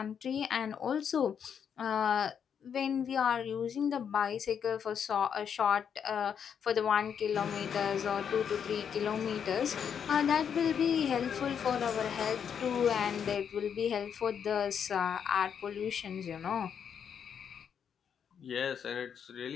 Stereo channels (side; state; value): right; quieter; 7.7 dB